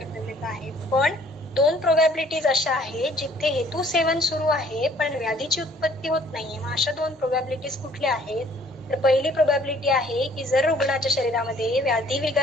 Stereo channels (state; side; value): normal; both; correlation 0.58